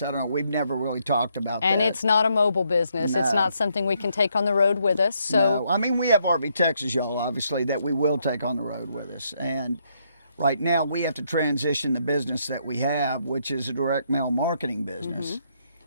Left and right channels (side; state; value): both; inverted; correlation -0.74